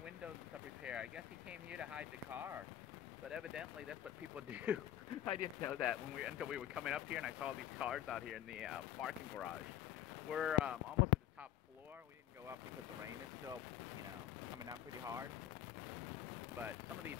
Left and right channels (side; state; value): right; quieter; 11.6 dB